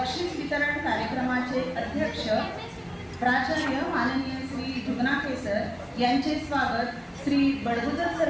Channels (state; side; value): identical; both; correlation 1.00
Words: वितरण कार्यक्रमाचे अध्यक्ष प्राचार्य माननीय श्री जुगनाके सर यांचे स्वागत श्री बडगुजर सर